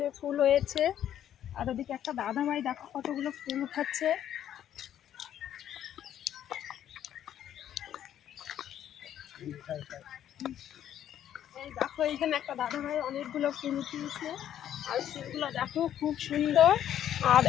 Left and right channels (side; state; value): right; quieter; 10.7 dB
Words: ফুল হয়েছে, আর ওদিকে একটা দাদা ভাই দেখো কতগুলো ফুল উঠাচ্ছে। এই দেখো এইখানে একটা দাদা ভাই অনেকগুলো ফুল উঠিয়েছে, আর ফুলগুলো দেখো খুব সুন্দর। আর